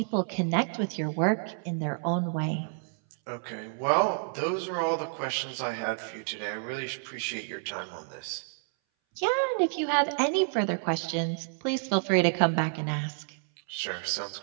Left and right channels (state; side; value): silent; left; 58 dB below the other